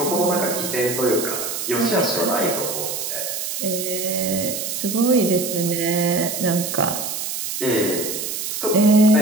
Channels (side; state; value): right; noise; hiss, 4 dB below the sound